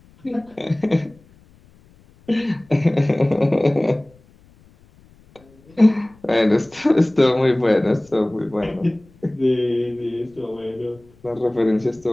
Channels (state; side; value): noise; left; rumble, 29 dB below the sound